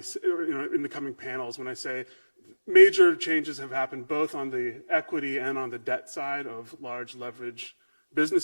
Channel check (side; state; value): both; inverted; correlation -1.00